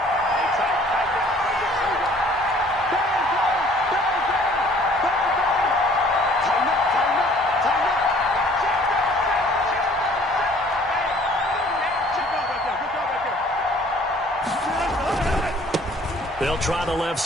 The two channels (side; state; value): both; normal; correlation 0.55